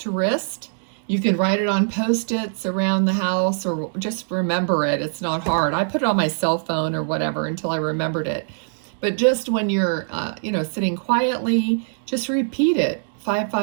wrist. You can write it on Post-its around the house, or just remember it. It's not hard. I put it on my cell phone or whatever until I remembered it. But just when you're, sitting quietly, just repeat it.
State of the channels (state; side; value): silent; left; digital silence